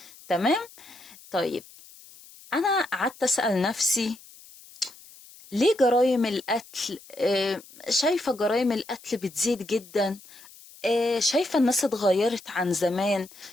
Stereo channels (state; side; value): noise; left; hiss, 21 dB below the sound